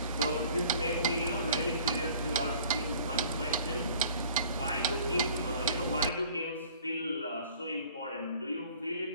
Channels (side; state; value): both; inverted; correlation -0.51